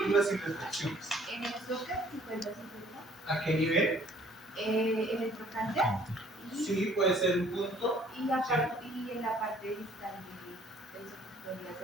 sin retracciones. En el soccer, 50-50. ¿A qué nivel? En el trocánter. Sí, puede ser un punto. Y en la parte distal del soccer podría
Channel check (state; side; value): normal; both; correlation 0.58